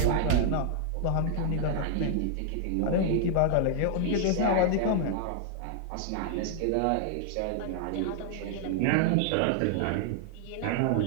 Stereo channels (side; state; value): both; different; correlation 0.00